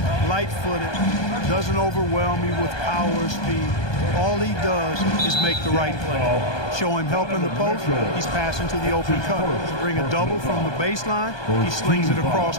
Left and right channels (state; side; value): late; right; 1.2 ms